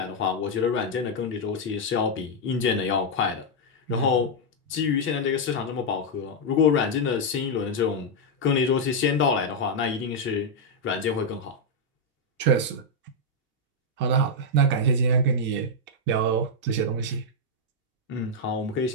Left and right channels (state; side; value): normal; both; correlation -0.01